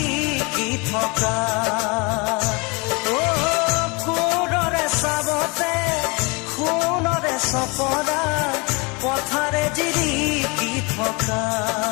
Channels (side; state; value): right; quieter; 28.9 dB